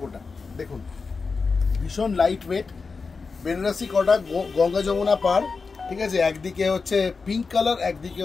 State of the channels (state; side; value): quieter; right; 4.6 dB